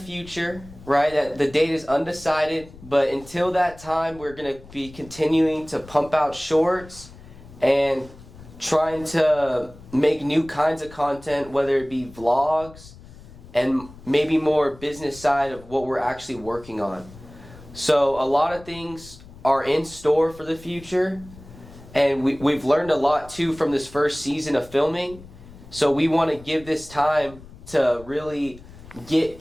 right? The date is undecided, but until that time, we're going to be continuing to pump out shorts and trying to make new kinds of content, whether it be vlogs and maybe more business side of what we're actually working on. So a lot of things are in store for the future, and we've learned a lot too from this first season of filming. So we want to give this time to really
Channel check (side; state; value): left; noise; rumble, 19 dB below the sound